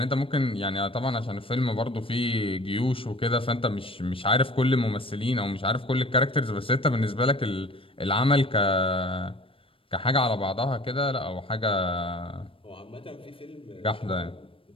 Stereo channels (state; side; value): late; right; 0.26 ms